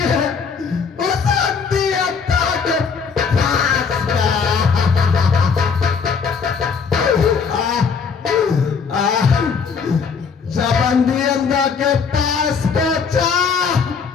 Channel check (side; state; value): right; quieter; 5.8 dB